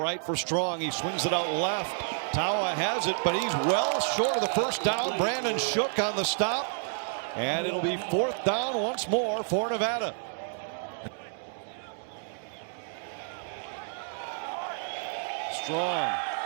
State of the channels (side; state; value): left; silent; 58 dB below the other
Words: for Strong. He swings it out left. Tawa has it, but he's well short of the first down. Brandon Shook on the stop, and it'll be 4th down once more for Nevada. Strong